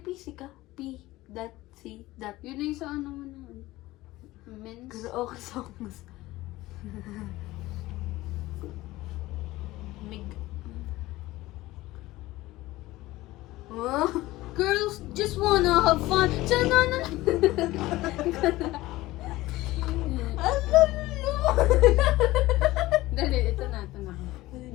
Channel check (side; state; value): right; quieter; 18.0 dB